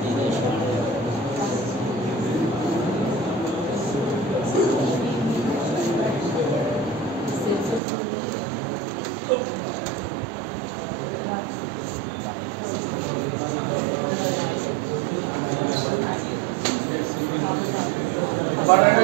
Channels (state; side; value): drops out; left; at 7.8 s